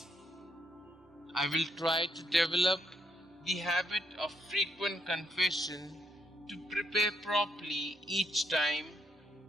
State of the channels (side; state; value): both; normal; correlation 0.75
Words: I will try to develop the habit of frequent confession, to prepare properly each time,